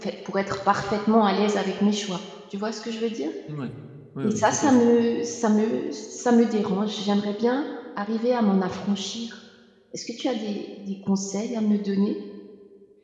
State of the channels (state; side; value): identical; both; correlation 1.00